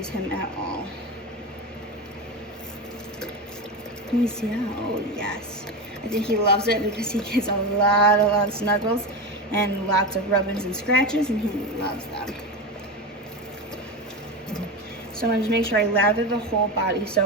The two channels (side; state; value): both; normal; correlation 0.20